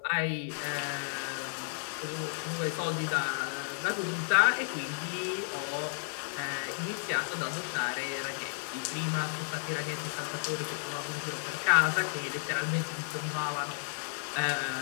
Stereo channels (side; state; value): right; silent; 56 dB below the other